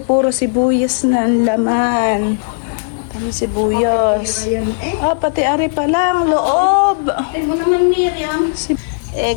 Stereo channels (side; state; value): right; silent; 66 dB below the other